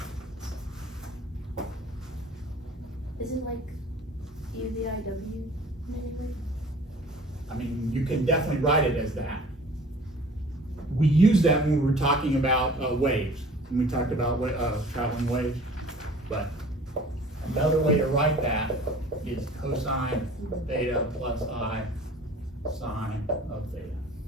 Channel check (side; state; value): both; normal; correlation 0.47